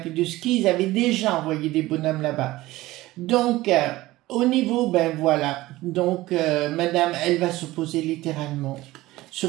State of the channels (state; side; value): quieter; left; 18.0 dB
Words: de ski, ils avaient déjà envoyé des bonhommes là-bas. Donc, au niveau, ben voilà, donc Madame, elle va s'opposer littéralement,